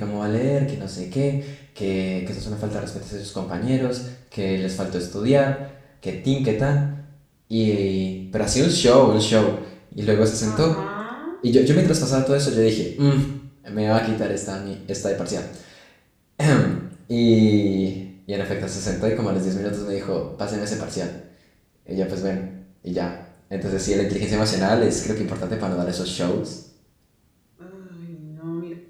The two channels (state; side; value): identical; both; correlation 1.00